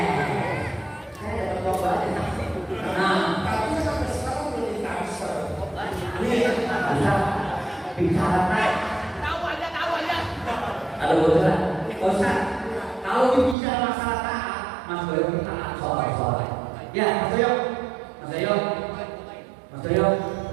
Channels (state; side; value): drops out; left; at 13.6 s